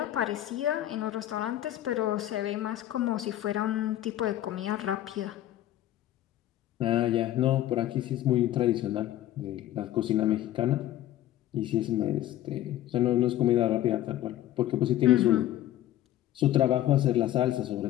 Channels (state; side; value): quieter; right; 13.4 dB